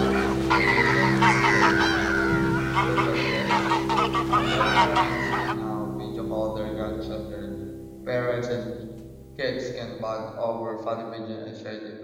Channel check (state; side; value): identical; both; correlation 1.00